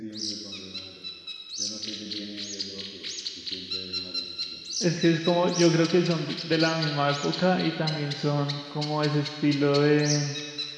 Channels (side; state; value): both; identical; correlation 1.00